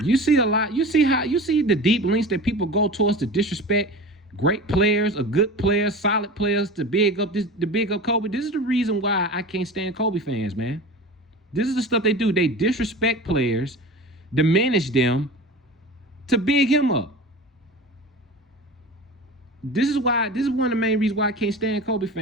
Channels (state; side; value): normal; both; correlation 0.33